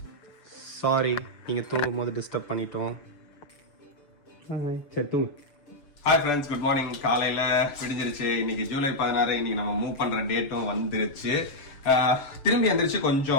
சாரி, நீங்க தூங்கும் போது டிஸ்டர்ப் பண்ணிட்டோம். சரி தூங்கு. Hi friends, good morning. காலையில விடிஞ்சிருச்சு. இன்னைக்கு ஜூலை 16. இன்னைக்கு நம்ம மூவ் பண்ற டேட்டும் வந்துருச்சு. திரும்பி எந்திரிச்சு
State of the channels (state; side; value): late; right; 6.8 ms